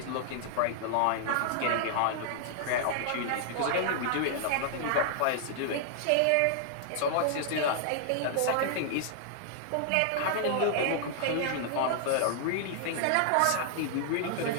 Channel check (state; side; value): different; both; correlation -0.01